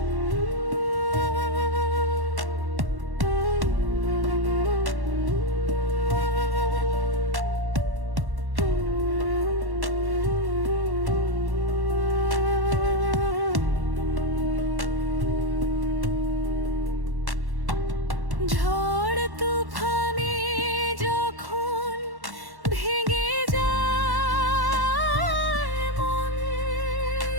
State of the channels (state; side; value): late; left; 1.1 ms